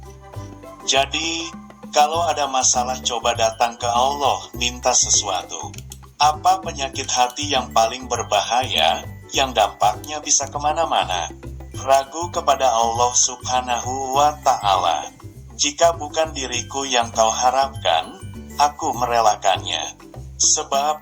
Jadi, kalau ada masalah coba datang ke Allah, minta sesuatu. Apa penyakit hati yang paling berbahaya, yang dampaknya bisa kemana-mana? Ragu kepada Allah Subhanahu wa Ta'ala. Jika bukan diriku yang kau harapkan, aku merelakannya. Sebab,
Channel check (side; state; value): both; identical; correlation 1.00